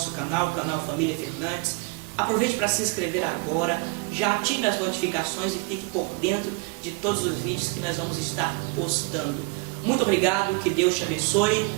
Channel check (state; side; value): quieter; left; 27.0 dB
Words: canal, o canal Família Fernandes, aproveite para se inscrever agora, já ative as notificações e fique por dentro de todos os vídeos que nós vamos estar postando. Muito obrigado, que Deus te abençoe,